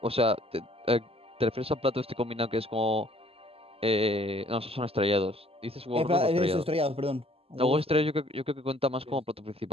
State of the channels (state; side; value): late; left; 0.28 ms